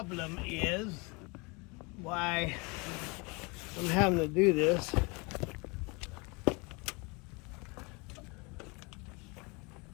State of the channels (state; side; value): quieter; right; 28.9 dB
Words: is why I'm having to do this.